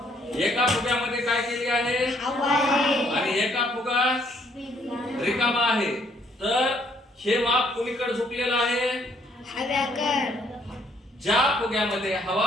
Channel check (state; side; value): normal; both; correlation 0.67